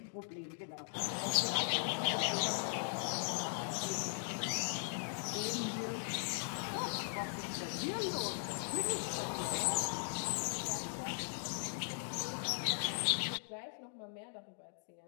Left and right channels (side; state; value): right; silent; digital silence